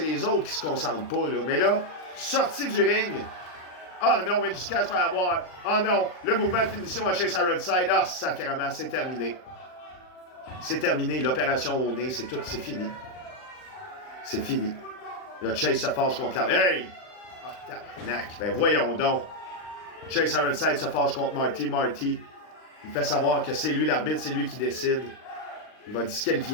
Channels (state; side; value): late; right; 39 ms